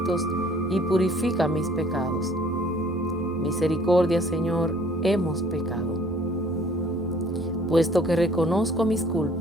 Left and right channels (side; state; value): both; normal; correlation 0.57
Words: y purifica mis pecados. Misericordia, Señor, hemos pecado. Puesto que reconozco mis